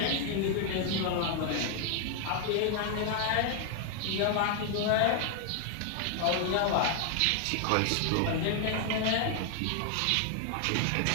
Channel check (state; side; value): different; both; correlation 0.00